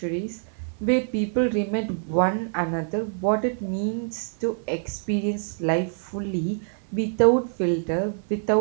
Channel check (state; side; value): silent; left; 55 dB below the other